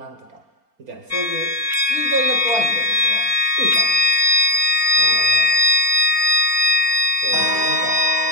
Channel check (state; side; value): late; left; 4.4 ms